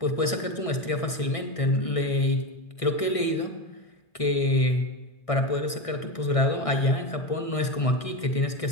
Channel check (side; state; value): right; late; 1.6 ms